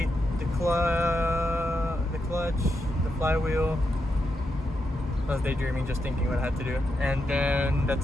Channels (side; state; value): both; normal; correlation 0.84